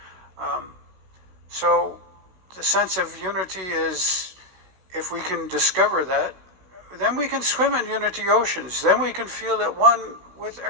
So the sense of unity is, if we can discover that, then we can swim in unity oceans. Then we can feel at one with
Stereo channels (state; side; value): late; left; 16 ms